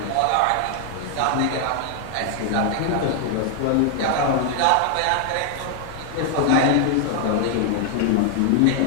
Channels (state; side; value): different; both; correlation 0.00